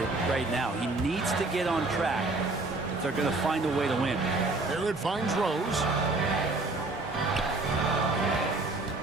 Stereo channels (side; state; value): left; quieter; 3.2 dB